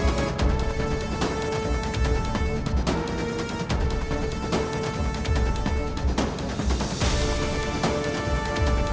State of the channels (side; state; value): both; identical; correlation 1.00